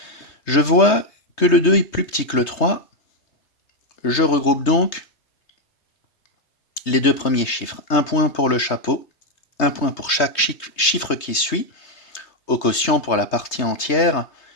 Je vois que le 2 est plus petit que le 3. Je regroupe donc les deux premiers chiffres. Un point pour le chapeau, un point pour chaque chiffre qui suit. Au quotient pour la partie entière,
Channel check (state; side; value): late; right; 3.3 ms